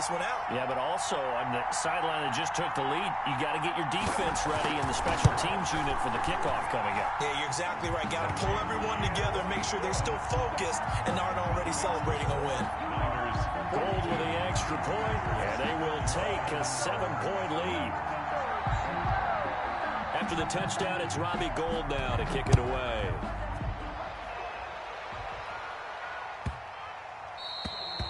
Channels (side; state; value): both; identical; correlation 1.00